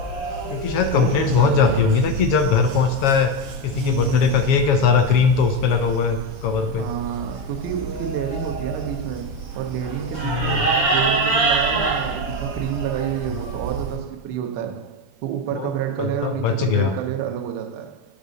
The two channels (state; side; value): late; right; 7.2 ms